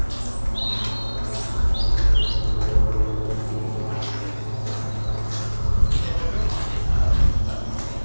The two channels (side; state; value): both; inverted; correlation -1.00